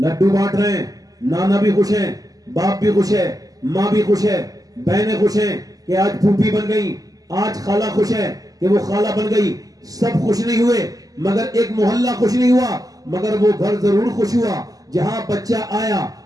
بانٹ رہے ہیں، نانا بھی خوش ہیں، باپ بھی خوش ہے، ماں بھی خوش ہے، بہنیں خوش ہیں کہ آج پھوپھی بن گئی، آج خالہ خوش ہے کہ وہ خالہ بن گئی۔ سب خوش نہیں ہوئے، مگر ایک محلہ خوش نہیں ہوا، مگر وہ گھر ضرور خوش ہوا جہاں بچہ آیا۔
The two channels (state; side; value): late; left; 0.17 ms